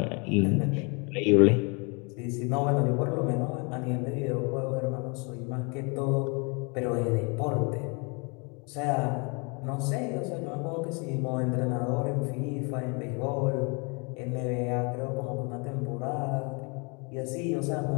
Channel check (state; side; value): quieter; right; 32.9 dB